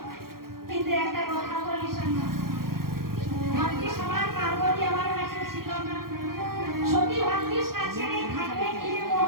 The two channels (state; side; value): late; left; 0.93 ms